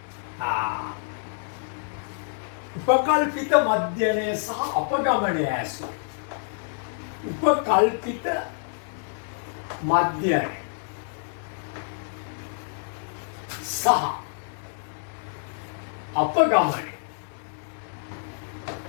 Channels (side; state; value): right; silent; digital silence